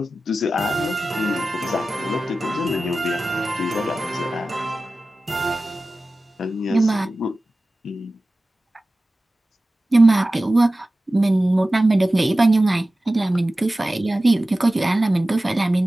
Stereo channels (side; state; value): both; normal; correlation 0.95